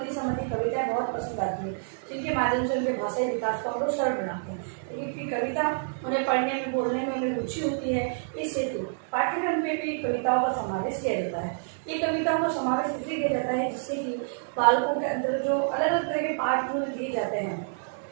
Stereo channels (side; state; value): left; silent; digital silence